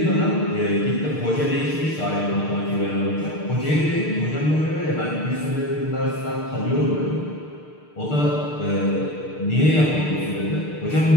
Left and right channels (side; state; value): right; late; 6.6 ms